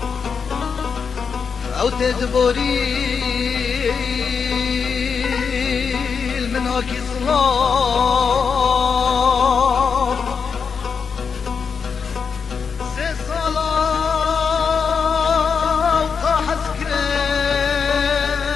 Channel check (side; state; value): right; quieter; 6.0 dB